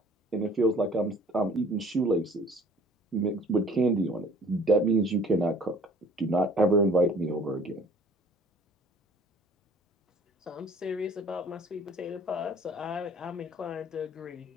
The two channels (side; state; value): both; normal; correlation 0.52